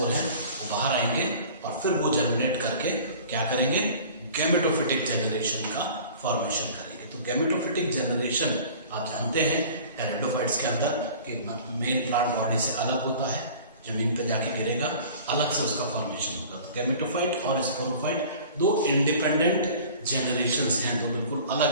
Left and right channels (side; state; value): both; inverted; correlation -0.44